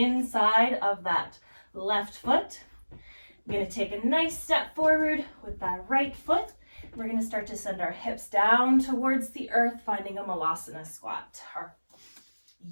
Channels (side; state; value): both; inverted; correlation -1.00